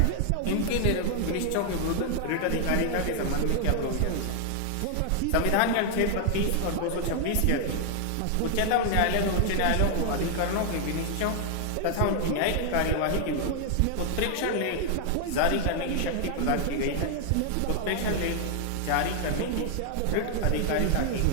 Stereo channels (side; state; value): both; different; correlation 0.00